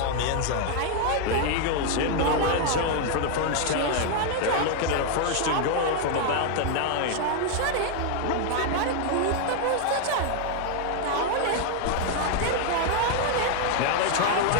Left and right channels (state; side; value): different; both; correlation 0.00